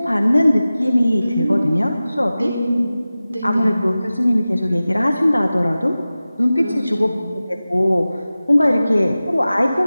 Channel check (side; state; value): both; inverted; correlation -0.96